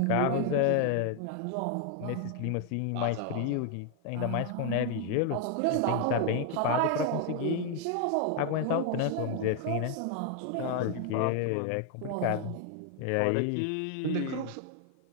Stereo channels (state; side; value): different; both; correlation 0.00